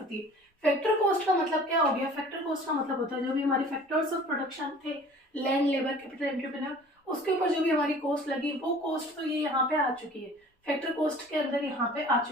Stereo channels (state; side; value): normal; both; correlation 0.47